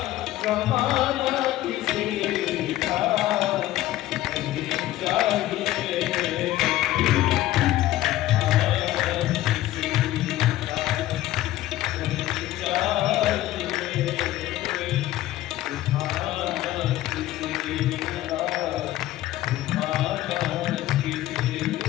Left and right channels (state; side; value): quieter; right; 14.9 dB